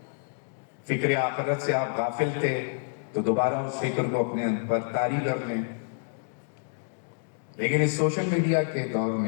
فکر آخرت سے آپ غافل تھے تو دوبارہ اس فکر کو اپنے پر طاری کر لیں۔ لیکن اس سوشل میڈیا کے دور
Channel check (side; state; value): right; silent; digital silence